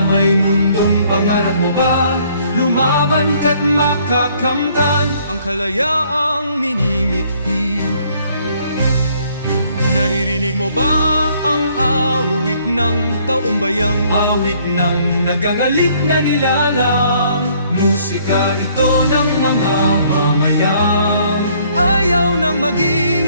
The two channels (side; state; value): both; inverted; correlation -0.63